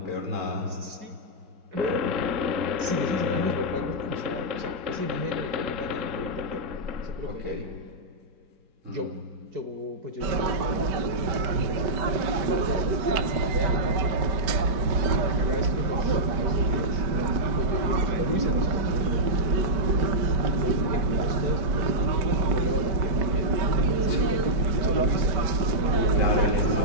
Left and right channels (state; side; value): late; left; 5.1 ms